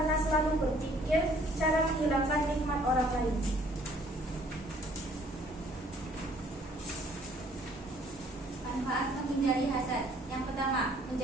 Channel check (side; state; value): both; normal; correlation 0.60